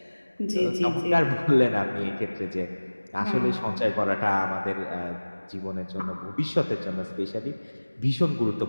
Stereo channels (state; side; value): inverted; both; correlation -1.00